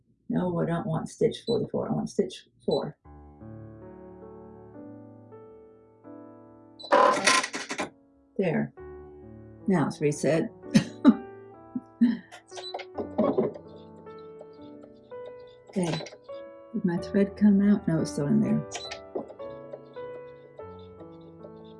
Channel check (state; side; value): identical; both; correlation 1.00